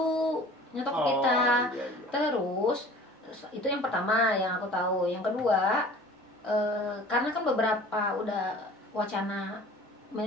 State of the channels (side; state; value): both; normal; correlation 0.45